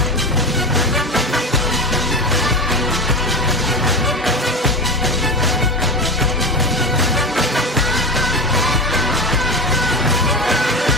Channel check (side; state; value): both; normal; correlation 0.24